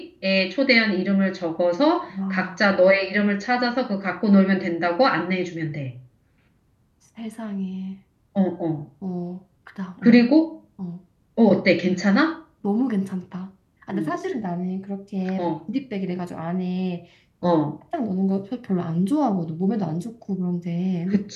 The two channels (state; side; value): identical; both; correlation 1.00